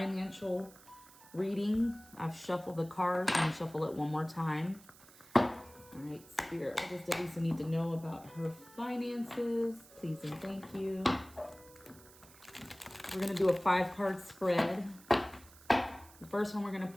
reading. I've shuffled the cards. I'm gonna shuffle it one more time. All right, Spirit. What does Delisa need to know about her finances? Please and thank you. We're gonna do a 5-card spread. The first one we're gonna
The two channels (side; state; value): right; noise; hiss, 22 dB below the sound